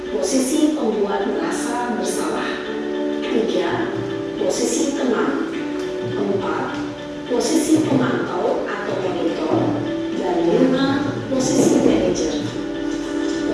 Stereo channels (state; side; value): identical; both; correlation 1.00